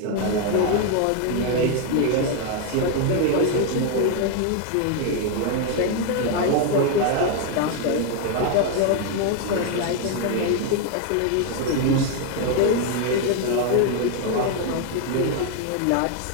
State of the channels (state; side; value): different; both; correlation 0.01